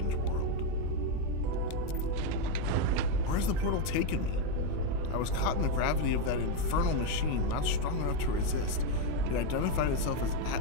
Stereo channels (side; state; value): both; different; correlation 0.04